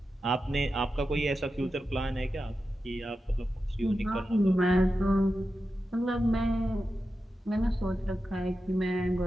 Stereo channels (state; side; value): normal; both; correlation 0.91